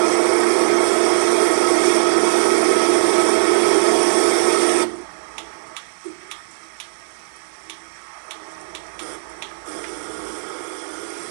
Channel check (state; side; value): silent; left; 57 dB below the other